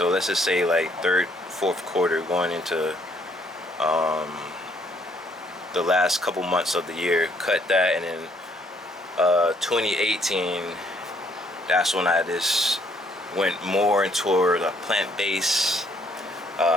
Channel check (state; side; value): normal; both; correlation 0.67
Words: let's just say like third, fourth quarter, going into the last couple months of the year. Cut that, and then 2018, that's when I just went more toward a plant-based,